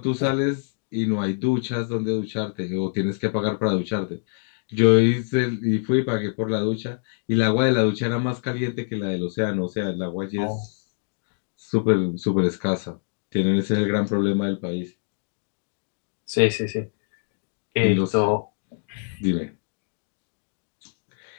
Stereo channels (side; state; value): right; silent; digital silence